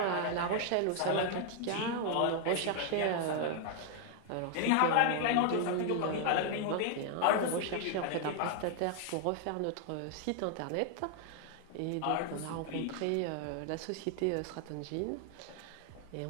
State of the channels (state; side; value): different; both; correlation 0.00